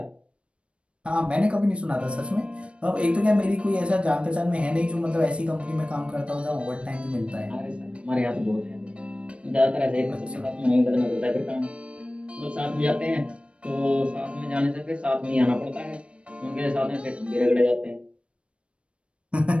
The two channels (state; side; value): late; left; 0.060 ms